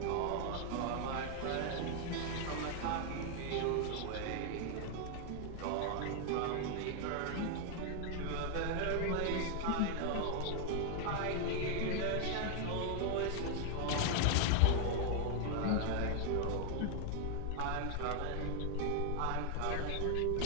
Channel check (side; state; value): both; different; correlation 0.00